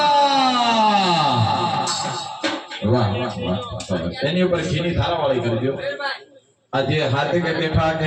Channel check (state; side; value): identical; both; correlation 1.00